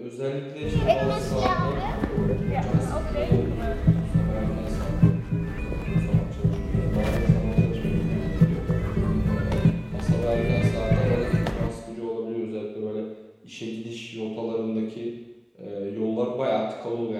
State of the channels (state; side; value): identical; both; correlation 1.00